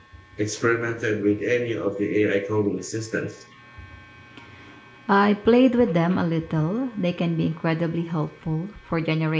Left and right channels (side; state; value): both; identical; correlation 1.00